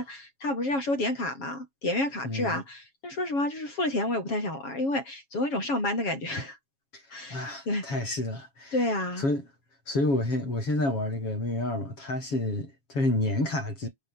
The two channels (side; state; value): right; late; 7.3 ms